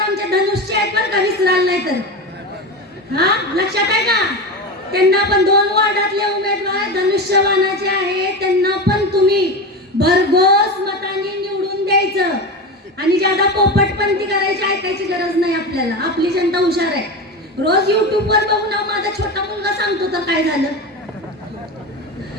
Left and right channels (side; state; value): both; normal; correlation 0.23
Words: धनुष्य आहेत बरं का, विसराल नाही तर. लक्षात आहे का? त्यांना पण 2 वॉर्डातले उमेदवार धनुष्यबाणाचे आहेत, त्यांना पण तुम्ही भरघोस मतांनी निवडून द्यायचं, आणि ज्यादा पोपटपंती करायची ऐकायची गरज नाही आपल्याला. आपली जनता हुशार आहे. रोज YouTube वर बघून माझा छोटा मुलगा सांगतो तर काय झालं,